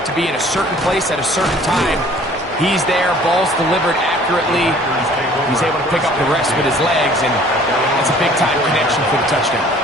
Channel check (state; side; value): normal; both; correlation 0.53